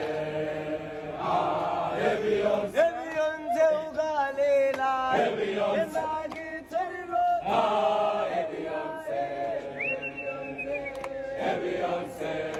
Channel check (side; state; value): both; identical; correlation 1.00